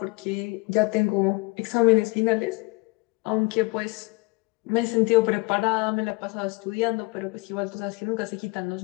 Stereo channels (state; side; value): quieter; right; 25.5 dB